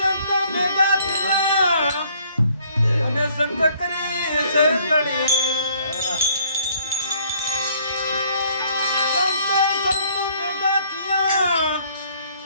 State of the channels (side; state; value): both; inverted; correlation -0.61